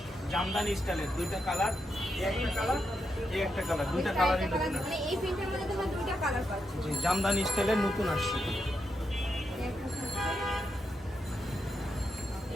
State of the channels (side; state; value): both; normal; correlation 0.84